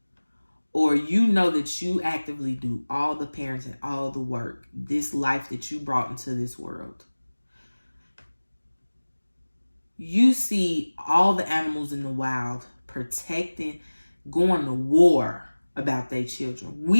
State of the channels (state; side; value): inverted; both; correlation -1.00